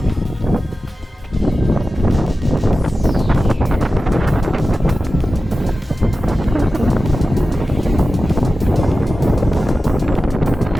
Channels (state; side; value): normal; both; correlation 0.94